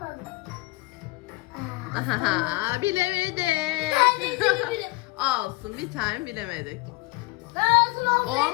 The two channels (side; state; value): right; quieter; 22.1 dB